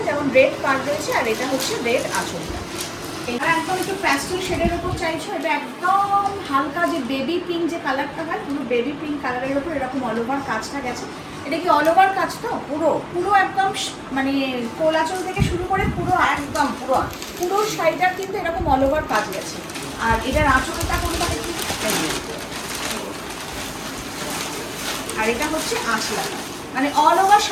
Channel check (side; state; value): both; identical; correlation 1.00